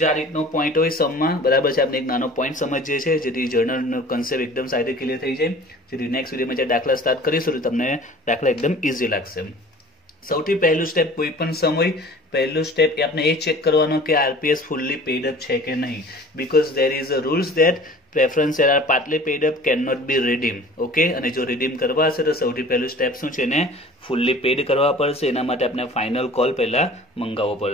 જે આ રીતનો પોઈન્ટ હોય સમમાં, બરાબર છે, આપણે એક નાનો પોઈન્ટ સમજીએ છીએ જેથી જર્નલનો કન્સેપ્ટ એકદમ સારી રીતે ક્લિયર થઈ જાય. જેથી નેક્સ્ટ વિડીયોમાં જે દાખલા સ્ટાર્ટ કરીશું તો તમને દાખલા એકદમ ઇઝી લાગશે. સૌથી પહેલું સ્ટેપ કોઈ પણ સમ હોય, પહેલું સ્ટેપ એ આપણે એ ચેક કરવાનો કે આરપીએસ ફુલ્લી પેડ અપ છે કે નહીં. Because there is a rules that preference share are partly paid up, can not be redeem. Okay, અને જો રીડીમ કરવા હશે તો સૌથી પહેલું સ્ટેપ શું છે, એને ફુલ્લી પેડ કરવા પડશે. એના માટે આપણે ફાઇનલ કોલ પહેલા મંગાવવો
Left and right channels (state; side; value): normal; both; correlation 0.45